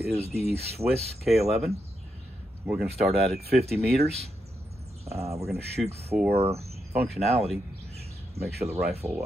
the Swiss K11. We're going to start out at 50 meters. We're going to shoot for functionality, make sure the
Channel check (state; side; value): normal; both; correlation 0.83